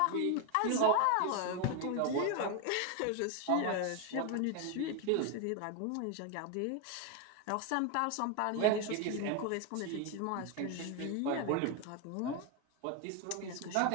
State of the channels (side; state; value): both; different; correlation 0.01